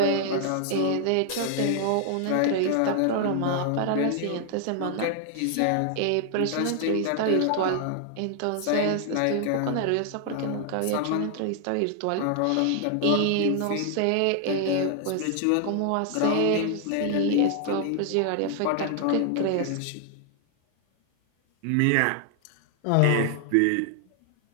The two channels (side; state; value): both; different; correlation 0.00